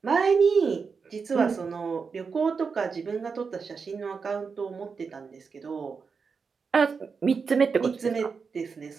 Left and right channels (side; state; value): left; quieter; 5.3 dB